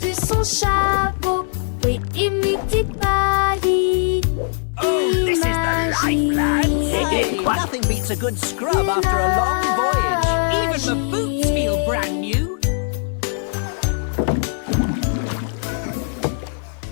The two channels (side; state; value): right; silent; digital silence